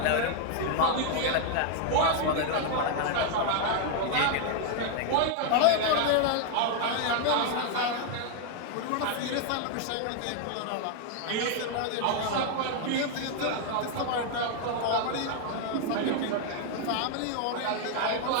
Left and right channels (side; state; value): both; different; correlation 0.00